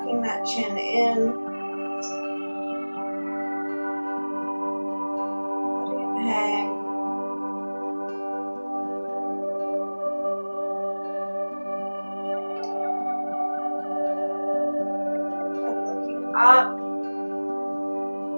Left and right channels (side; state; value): both; inverted; correlation -1.00